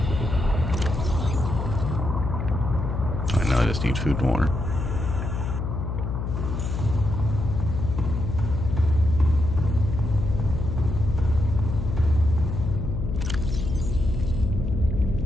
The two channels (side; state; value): left; noise; hum, 3 dB below the sound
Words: I just need food and water.